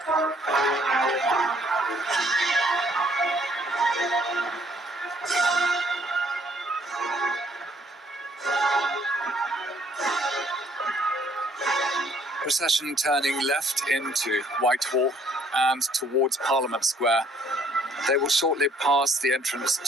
Procession turning left into Whitehall and towards Parliament Square. They will shortly pass the entrance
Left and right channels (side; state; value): both; normal; correlation 0.63